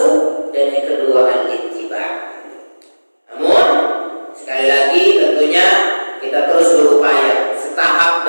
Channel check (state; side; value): inverted; both; correlation -1.00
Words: dan yang kedua al-ittiba. Namun sekali lagi tentunya kita terus berupaya setahap